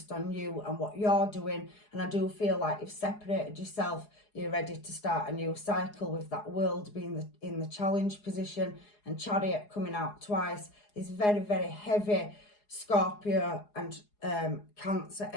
on you and what you're doing, and I do feel like you've separated yourself. You're ready to start a new cycle with that World being in the challenge position, and Chariot coming out twice is very, very heavy Scorpio and Cancer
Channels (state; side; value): late; right; 4.8 ms